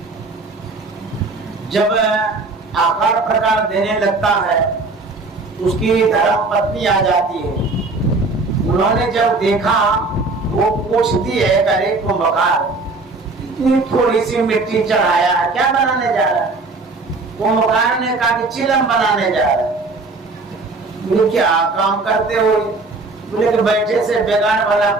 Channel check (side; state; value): left; quieter; 3.5 dB